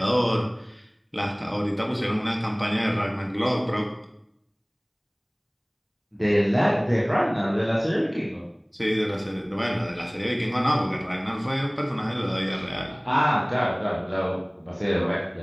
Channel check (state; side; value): identical; both; correlation 1.00